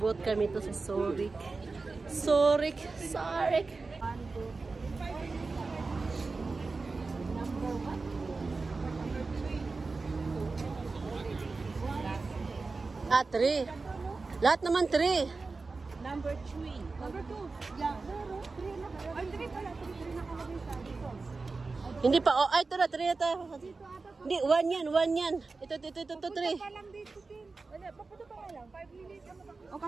kami to sa Zurich. Zurich. Ah, 3. Lahat naman 3. Number 3. Number 2. Yeah, 3 na. Ay, 3 pala. 3 nakalagay sa dito. Hindi pa. Oh, ay, ito na. 3 na tayo. Hindi, 1 yan. 1 yan. Ito, 3. Pa lang dito, Tim. Wala, papunta pa lang. 5 minutes. O,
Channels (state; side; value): quieter; left; 3.9 dB